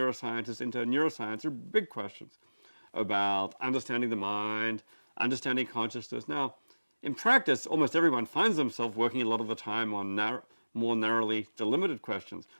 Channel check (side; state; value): both; inverted; correlation -1.00